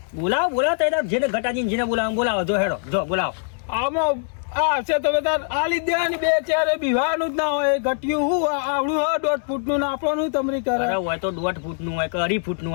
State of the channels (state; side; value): silent; right; digital silence